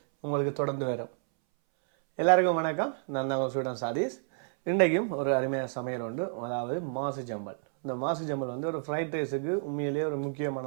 உங்களுக்கு தொடர்ந்து வரும். எல்லாருக்கும் வணக்கம். நான் தான் ஸ்டூடெண்ட் சாதீஸ். இன்றைக்கும் ஒரு அருமையான சமையல் உண்டு, அதாவது மாசு ஜம்பல். இந்த மாசு ஜம்பல் வந்து ஒரு ஃப்ரைட் ரைஸுக்கு உண்மையிலேயே ஒரு முக்கியமான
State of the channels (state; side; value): silent; left; 58 dB below the other